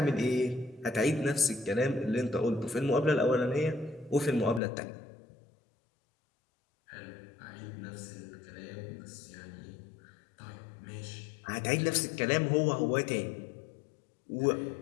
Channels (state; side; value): drops out; right; at 4.6 s